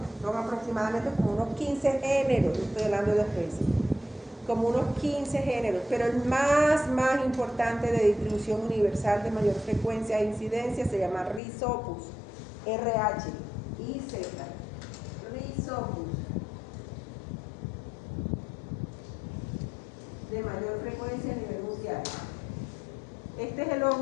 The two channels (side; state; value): right; drops out; at 11.4 s